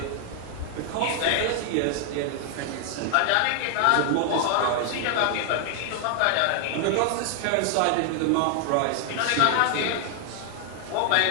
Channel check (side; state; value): both; different; correlation 0.00